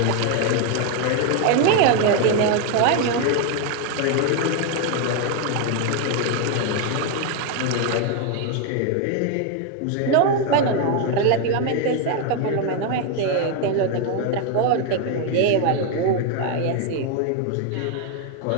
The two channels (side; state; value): both; different; correlation 0.01